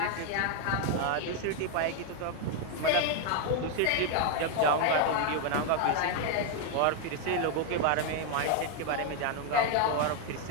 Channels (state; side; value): different; both; correlation 0.00